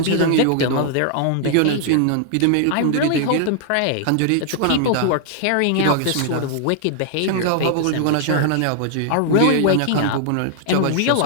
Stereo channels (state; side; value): different; both; correlation 0.00